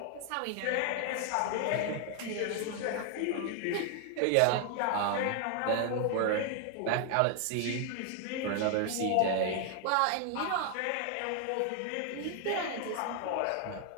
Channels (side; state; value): both; different; correlation 0.00